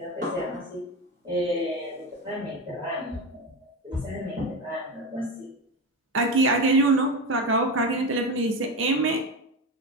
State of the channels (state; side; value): normal; both; correlation 0.19